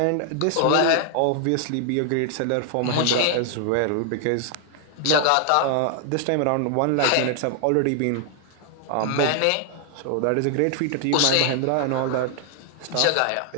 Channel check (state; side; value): different; both; correlation 0.00